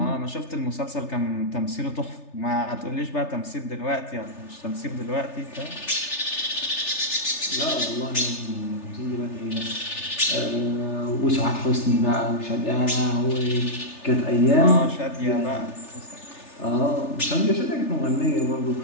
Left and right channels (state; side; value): late; right; 3.3 ms